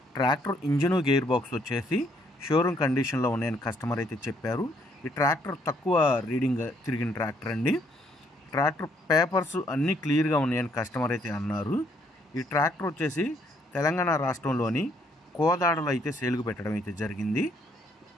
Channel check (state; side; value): normal; both; correlation 0.68